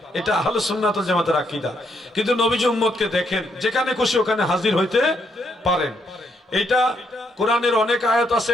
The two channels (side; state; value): both; normal; correlation 0.75